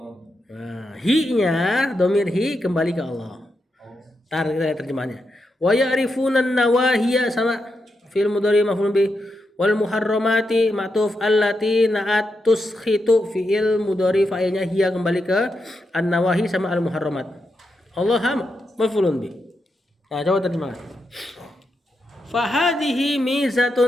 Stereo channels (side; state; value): both; normal; correlation 0.85